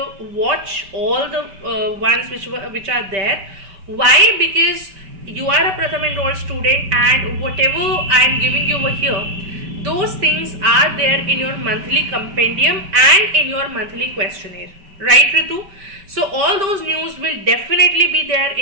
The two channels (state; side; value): late; left; 5.1 ms